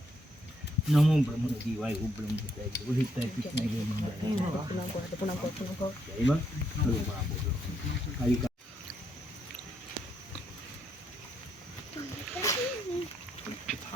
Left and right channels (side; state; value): both; normal; correlation 0.75